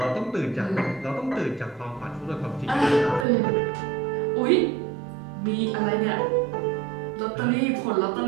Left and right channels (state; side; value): drops out; left; at 3.2 s